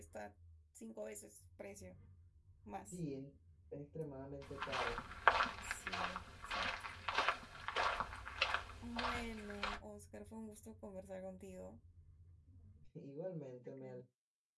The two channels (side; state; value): both; identical; correlation 1.00